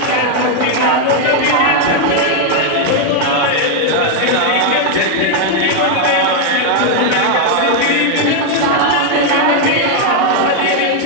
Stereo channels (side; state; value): both; different; correlation 0.00